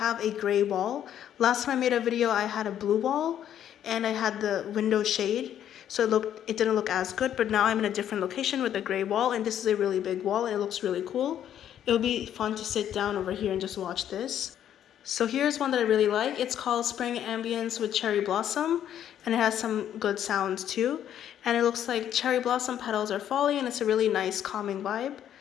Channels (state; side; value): quieter; right; 10.3 dB